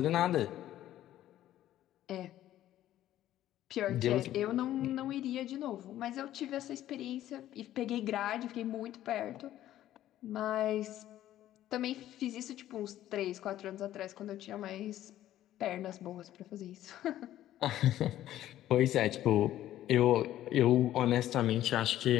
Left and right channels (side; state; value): right; quieter; 13.1 dB